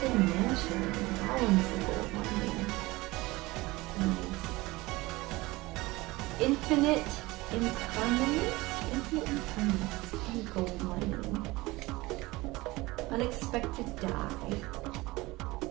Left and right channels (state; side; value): quieter; left; 21.0 dB